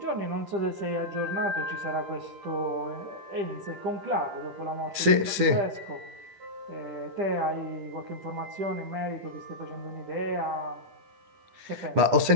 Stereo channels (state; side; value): late; left; 10 ms